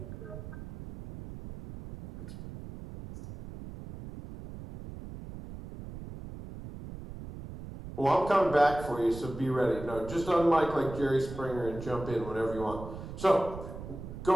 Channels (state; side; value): noise; right; rumble, 12 dB below the sound